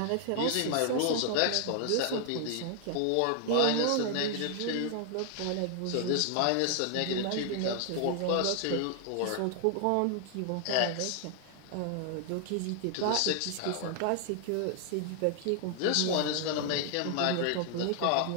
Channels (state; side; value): different; both; correlation 0.00